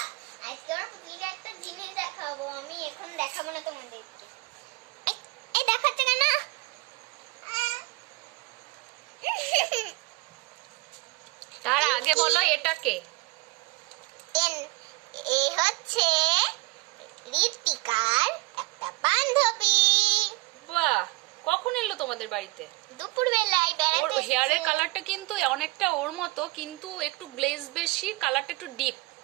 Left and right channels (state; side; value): quieter; left; 23.5 dB